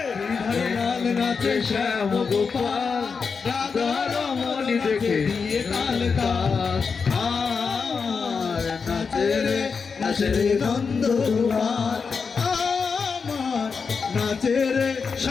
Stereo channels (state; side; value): quieter; right; 5.4 dB